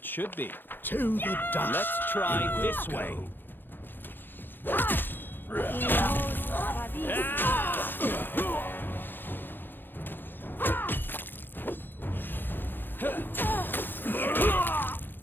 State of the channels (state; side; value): late; right; 0.096 ms